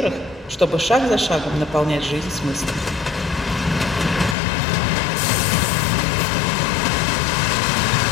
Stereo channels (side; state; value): right; drops out; at 4.4 s